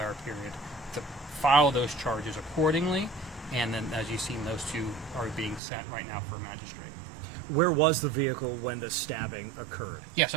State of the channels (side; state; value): left; drops out; at 5.6 s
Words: period to file those charges accordingly. And then, as you've seen, those two are being sent right now for a magistrate. Where was the vehicle when the stabbing occurred? Yeah,